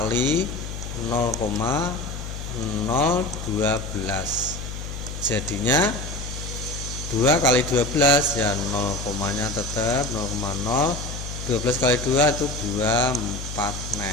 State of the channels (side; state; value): left; noise; hum, 8 dB below the sound